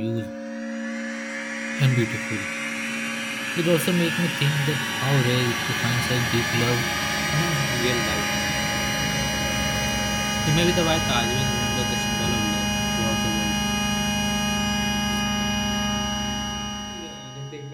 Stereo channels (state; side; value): identical; both; correlation 1.00